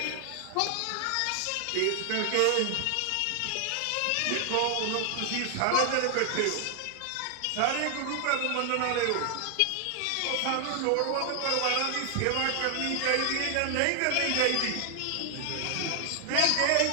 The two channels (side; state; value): both; different; correlation 0.00